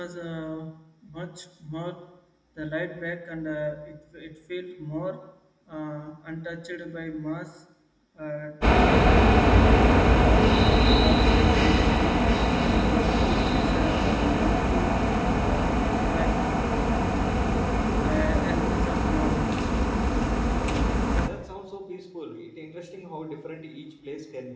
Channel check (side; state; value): both; identical; correlation 1.00